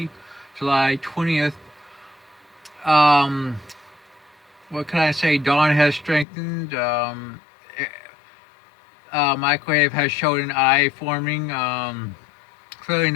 July 20th. Um, what can I say? Dawn has strengthened. Microwave has showed an eye forming. Clearly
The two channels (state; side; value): drops out; right; at 6.2 s